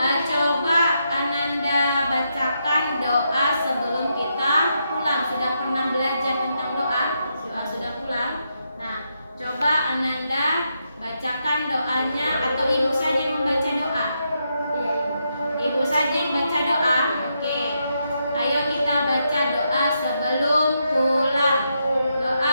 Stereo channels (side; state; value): both; inverted; correlation -0.81